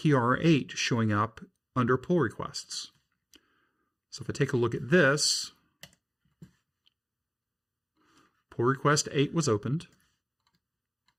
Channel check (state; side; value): identical; both; correlation 1.00